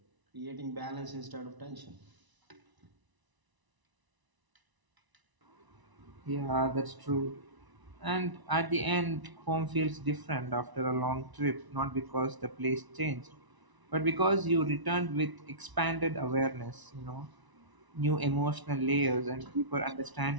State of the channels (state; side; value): late; left; 1.0 ms